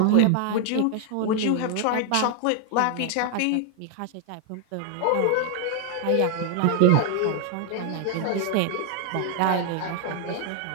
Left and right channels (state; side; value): different; both; correlation 0.00